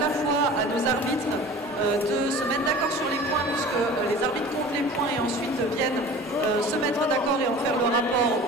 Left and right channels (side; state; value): both; normal; correlation 0.40